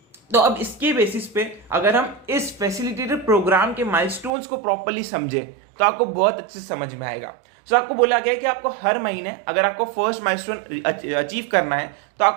तो अब इसके बेसिस पे अगर हम इस फैसिलिटेटर प्रोग्राम के माइलस्टोन्स को प्रॉपर्ली समझे तो आपको बहुत अच्छे से समझ में आएगा। सो आपको बोला गया कि आपको हर महीने अगर आपको फर्स्ट माइलस्टोन अचीव करना है तो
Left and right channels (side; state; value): left; drops out; at 4.3 s